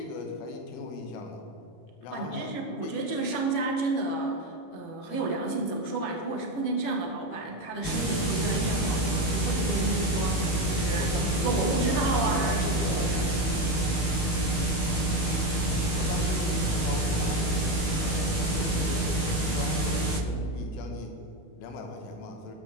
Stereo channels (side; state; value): right; late; 19 ms